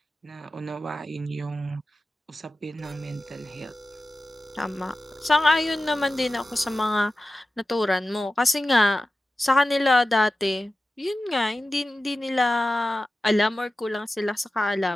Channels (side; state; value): both; normal; correlation 0.94